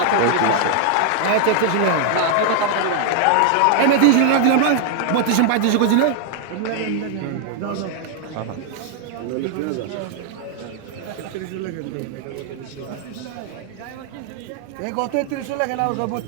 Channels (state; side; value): different; both; correlation 0.00